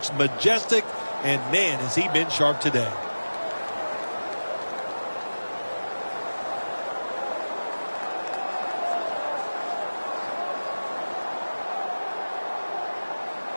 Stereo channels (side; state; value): both; inverted; correlation -1.00